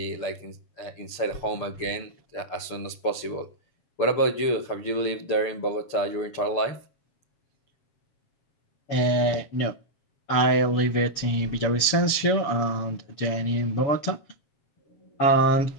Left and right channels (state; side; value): late; right; 7.0 ms